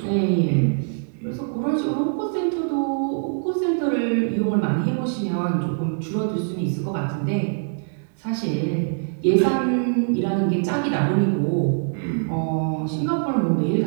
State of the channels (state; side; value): silent; left; 63 dB below the other